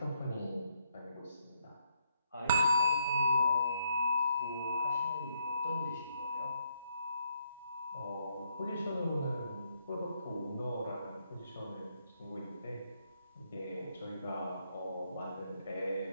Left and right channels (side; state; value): both; inverted; correlation -0.73